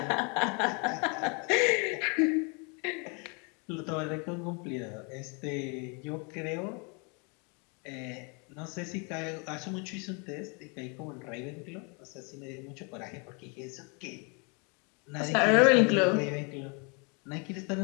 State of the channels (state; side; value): quieter; right; 33.8 dB